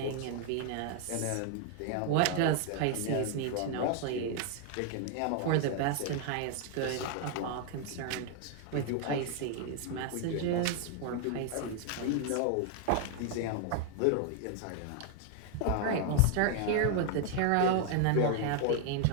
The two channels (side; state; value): both; different; correlation 0.00